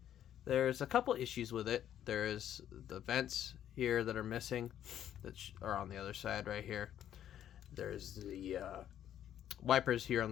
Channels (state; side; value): quieter; right; 10.7 dB